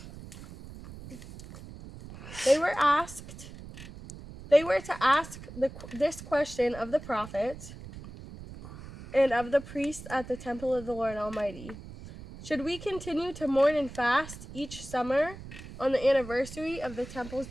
They were to ask this question of the prophets and of the priests at the temple of the Lord Almighty. Should we continue to mourn and fast each summer on the anniversary of the temple's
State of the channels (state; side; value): noise; right; rumble, 14 dB below the sound